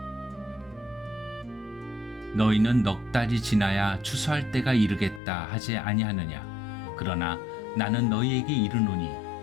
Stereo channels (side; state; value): right; drops out; at 5.2 s